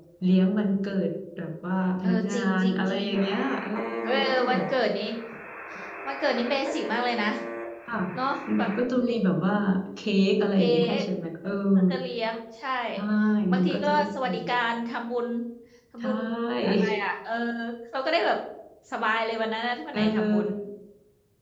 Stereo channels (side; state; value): both; identical; correlation 1.00